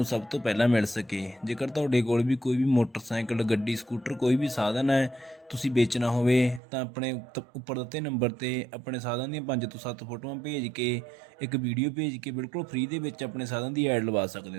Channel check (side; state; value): left; drops out; at 6.6 s